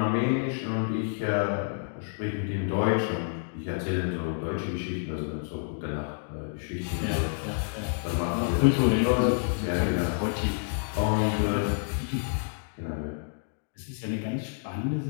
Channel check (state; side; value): silent; right; digital silence